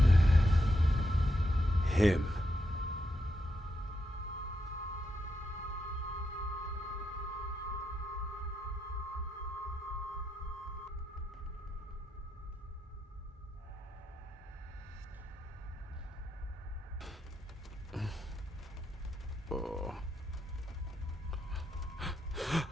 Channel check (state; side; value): normal; both; correlation 0.83